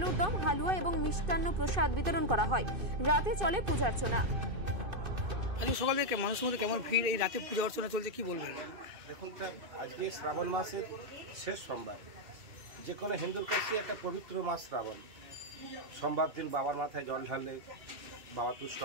দম, হালুয়া এবং মিষ্টান্ন প্রসাদ বিতরণ করা হয়। রাতে চলে পূজার্চনা। আজকে সকাল থেকে মানুষের মধ্যে কেমন ভিড়, এই রাতে পূজা অর্চনা চলছে, কি বলবেন? দেখুন স্যার, আজকে শ্রাবণ মাসের শেষ সোমবার। যে কোনো হিন্দুর কাছে একটা পবিত্র মাস শ্রাবণ। সোমবার দিন বাবার মাথায় জল ঢাললে বাবা তুষ্ট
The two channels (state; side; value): late; left; 2.5 ms